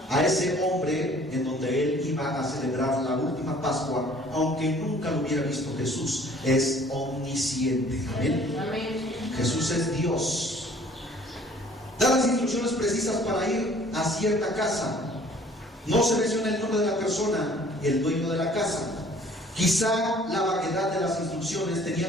a ese hombre en donde él iba a celebrar la última Pascua, aunque nunca lo hubiera visto. Jesús es omnisciente. Amén. Jesús es Dios. Da las instrucciones precisas para ir a cierta casa. No se menciona el nombre de la persona y el dueño de la casa. Quizá la vaguedad de las instrucciones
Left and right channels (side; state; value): both; normal; correlation 0.54